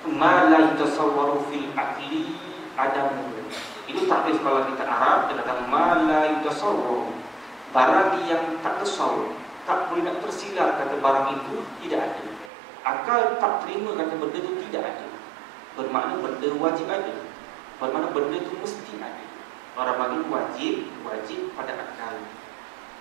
Ma la yatasawwaru fil aqli adamu. Itu takrif kalau kita Arab, dikatakan ma la yatasawwaru. Barang yang tak tasawwur, tak boleh nak tersilar kata barang itu tidak ada. Akal tak terima kata benda itu tidak ada. Bermakna benda wajib ada. Bermakna benda itu mesti ada. Orang bagi wajib pada akal.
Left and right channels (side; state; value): left; drops out; at 12.5 s